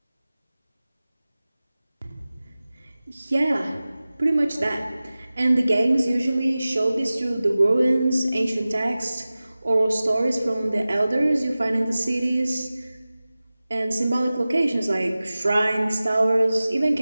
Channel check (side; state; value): both; inverted; correlation -0.97